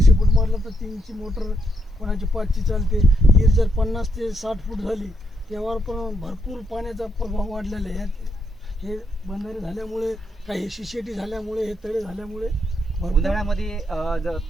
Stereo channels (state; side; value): normal; both; correlation 0.79